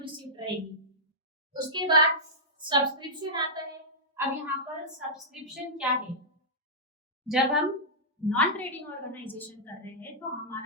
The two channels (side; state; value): both; normal; correlation -0.12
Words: रहेगी। उसके बाद सब्सक्रिप्शन आता है। अब यहाँ पर सब्सक्रिप्शन क्या है, जब हम नॉन ट्रेडिंग ऑर्गेनाइजेशन कर रहे हैं तो